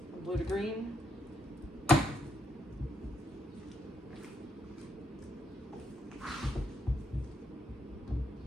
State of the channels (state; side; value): normal; both; correlation 0.77